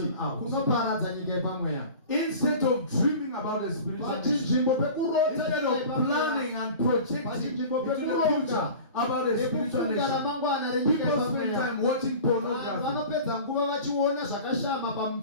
out. kunoparadza nyika yepamweya. Instead of dreaming about a spiritual nation, Pachinzvimbo pekurota instead nyika of yepamweya. planning and projecting Pachinzvimbo into the pekuronga future about a spiritual nekufunga nation, ramangwana renyika people spend yepamweya. time watching Vanhu pornography. vanopedza nguva vachiona zvakashama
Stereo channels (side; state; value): both; inverted; correlation -0.38